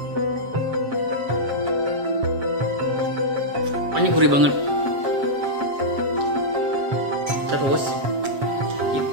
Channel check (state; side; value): late; left; 7.5 ms